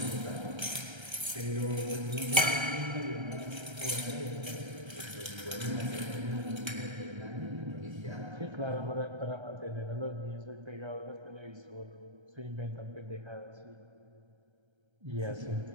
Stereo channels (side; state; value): left; late; 1.3 ms